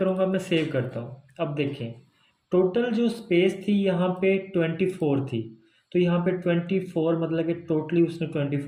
मैं सेव करता हूँ। अब देखें टोटल जो स्पेस थी यहाँ पे 24 थी, तो यहाँ पे 24 मतलब कि टोटली उसने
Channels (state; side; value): identical; both; correlation 1.00